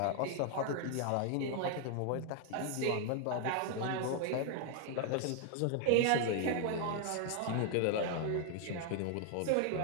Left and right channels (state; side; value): different; both; correlation 0.00